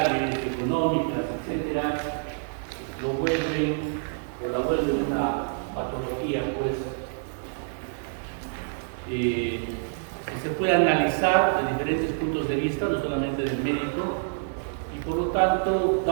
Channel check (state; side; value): silent; left; digital silence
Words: económicas, etcétera, la vuelven una patología, pues, que se puede analizar de diferentes puntos de vista, no solamente del médico, y por lo tanto,